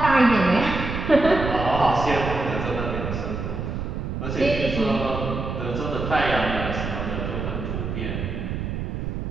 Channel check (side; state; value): right; noise; rumble, 4 dB below the sound